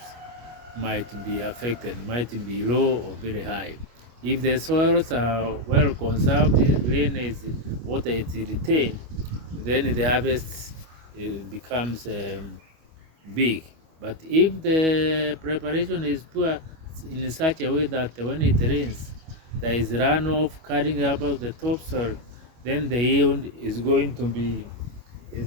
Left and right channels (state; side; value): late; left; 25 ms